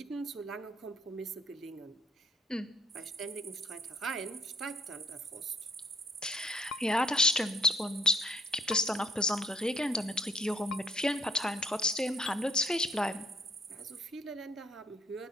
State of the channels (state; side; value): normal; both; correlation 0.65